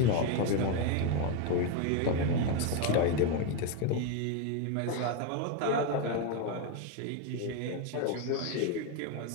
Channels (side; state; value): both; different; correlation 0.02